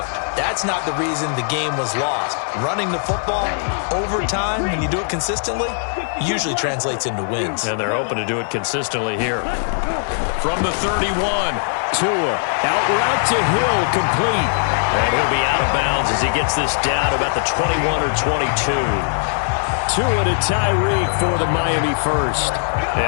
That's not the reason the game was lost. Running the football over time, when you do it consistently, usually translates into wins. And they're hoping to do it consistently here. From the 31, Tua, out route to Hill, complete. And he'll be out of bounds as he gets this down about the 21 or 22. Tua to Tyreek for the Miami first.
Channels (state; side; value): silent; right; digital silence